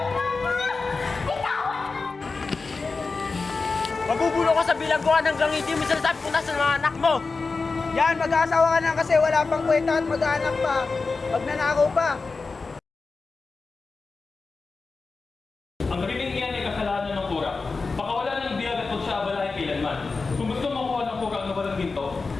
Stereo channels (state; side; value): quieter; right; 4.1 dB